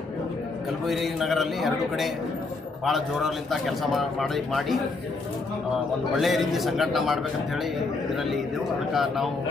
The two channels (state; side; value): quieter; right; 3.7 dB